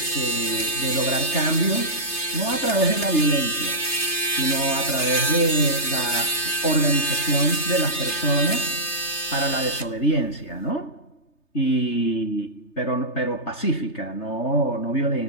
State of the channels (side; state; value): right; late; 3.3 ms